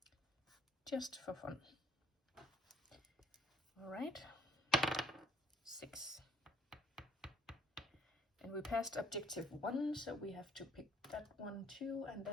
Just for fun. All right, 6. And we passed objective 1, so we have to pick that one too, and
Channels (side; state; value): both; normal; correlation 0.61